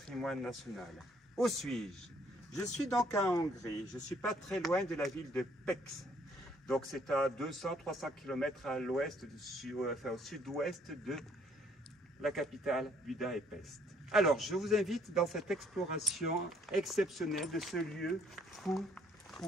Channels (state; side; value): normal; both; correlation 0.64